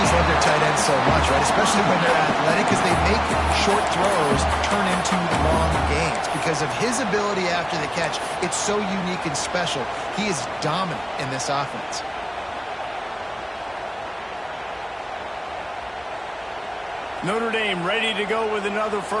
love their tight ends so much, right? Especially when they're athletic, because they make short throws turn into long gains. Because of his ability after the catch, it's so unique and special. He is dominant in this offense. Notre Dame ready to go with another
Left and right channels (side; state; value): both; identical; correlation 1.00